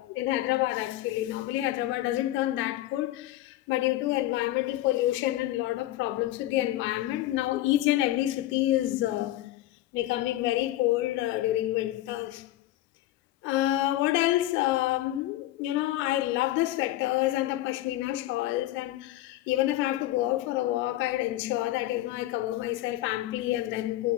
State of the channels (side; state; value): right; quieter; 15.4 dB